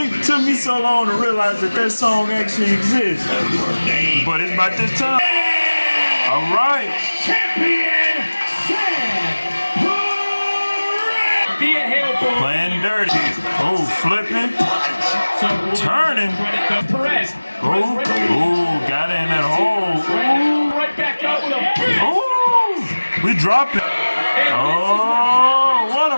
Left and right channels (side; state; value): both; inverted; correlation -1.00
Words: took me so long to realize that that song actually exists. But it's about this time. All right. Thea Hail Playing dirty. Oh, flipping. Turning. Perez. Oh, got it in that hole. Right back up with a big. Oh, we dropping. Oh, what a